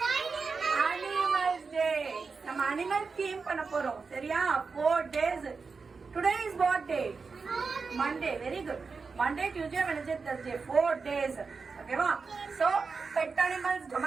Animals Day. நம்ம animal theme பண்ண போறோம். சரியா? 4 days. Today is what day? Monday. Very good. Monday, Tuesday, Wednesday, Thursday. 4 days. Okay, va? So, pet animals,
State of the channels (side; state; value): left; quieter; 4.8 dB